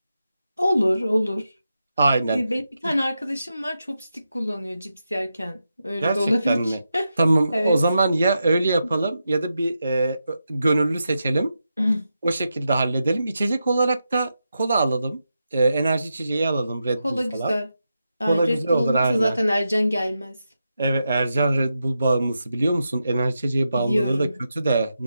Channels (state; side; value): inverted; both; correlation -0.88